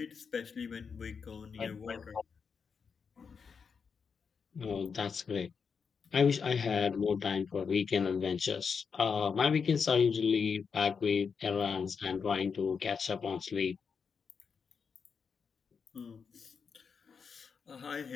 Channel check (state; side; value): quieter; right; 5.9 dB